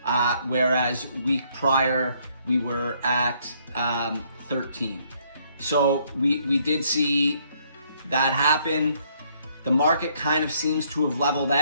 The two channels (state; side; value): inverted; both; correlation -0.68